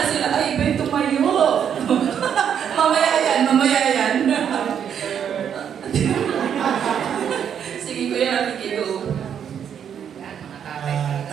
sila, ay, iba tumayo. Mamaya yan. Sige, Kuya Rafi, go.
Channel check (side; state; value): left; quieter; 8.4 dB